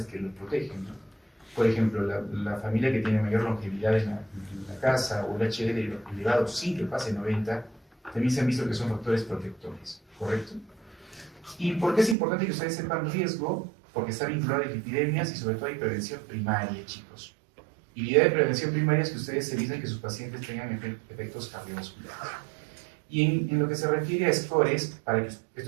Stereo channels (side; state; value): left; drops out; at 12.2 s